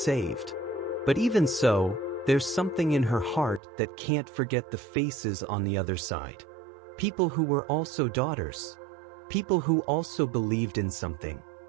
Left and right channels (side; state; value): left; drops out; at 3.6 s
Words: But even so, there's something in her heart that can't forget the faces on the other side. People who were also daughters. People who also believed in something.